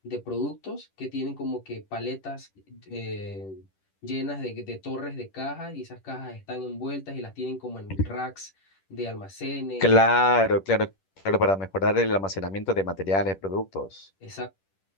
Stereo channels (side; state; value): right; late; 10 ms